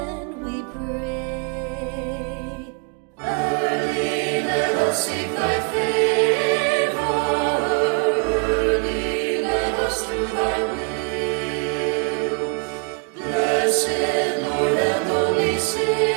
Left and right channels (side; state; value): left; quieter; 35.8 dB